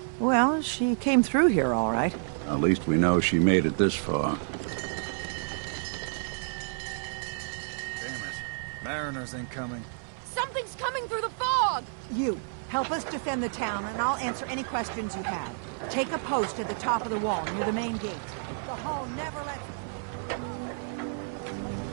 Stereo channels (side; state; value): left; silent; 58 dB below the other